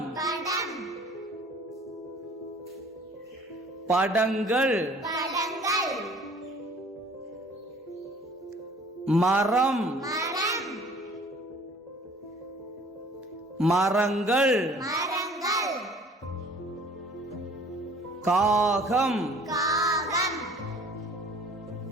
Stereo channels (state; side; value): normal; both; correlation 0.52